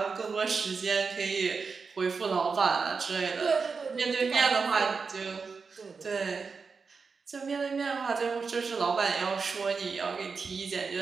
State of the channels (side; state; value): left; quieter; 5.0 dB